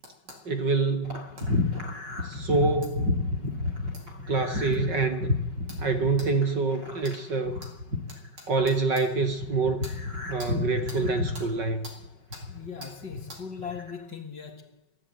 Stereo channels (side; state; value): left; late; 5.4 ms